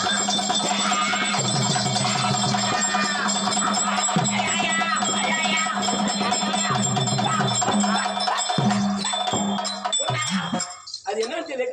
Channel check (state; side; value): identical; both; correlation 1.00